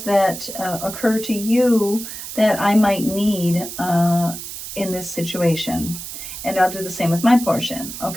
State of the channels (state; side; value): noise; right; hiss, 9 dB below the sound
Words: that occur to you that I might need in this situation. And I'll do the same with my portion.